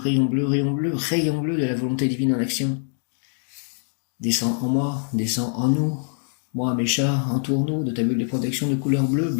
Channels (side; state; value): right; silent; 55 dB below the other